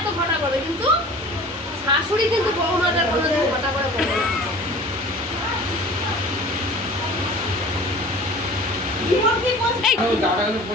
ঘটা করবে, কিন্তু শাশুড়ি কিন্তু বৌমাদের কোনো ঘটা করে করবে না।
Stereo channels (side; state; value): both; normal; correlation 0.43